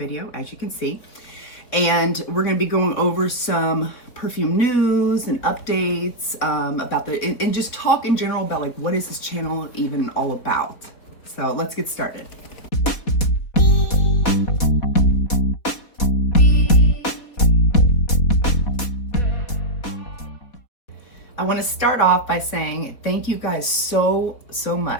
as you can see. And we're going to be going over some perfume news and updates about and just talk in general about like what is this channel even all about. So let's get started. I want to start off by saying thank you guys so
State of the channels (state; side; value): late; right; 4.2 ms